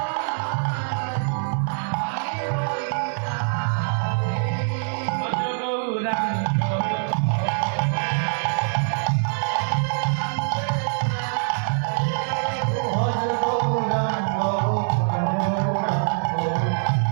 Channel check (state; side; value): silent; left; digital silence